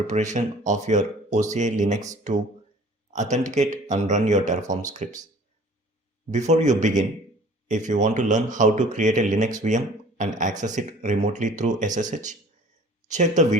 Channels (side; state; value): both; normal; correlation 0.49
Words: of your OCI Linux to authenticate and run your Terraform scripts. Before you begin, if you want to learn how to create a Linux VM and access it remotely through SSH, check the